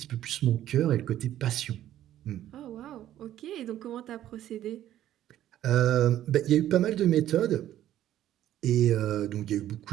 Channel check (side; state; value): left; quieter; 12.4 dB